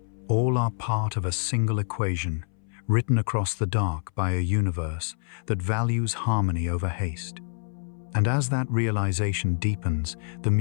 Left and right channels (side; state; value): right; silent; 60 dB below the other